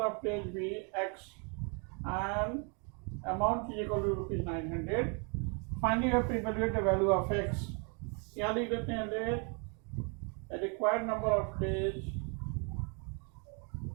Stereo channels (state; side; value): quieter; left; 36.6 dB